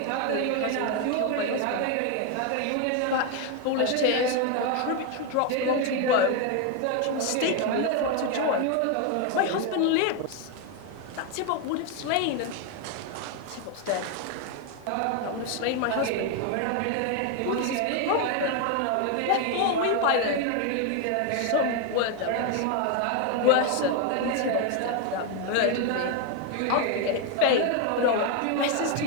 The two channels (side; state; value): both; different; correlation 0.01